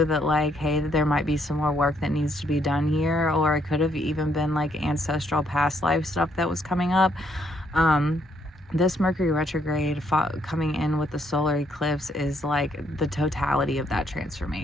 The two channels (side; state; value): both; normal; correlation 0.71